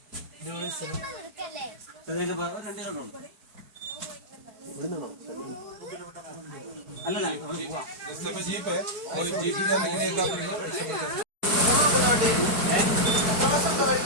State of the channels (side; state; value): left; late; 4.6 ms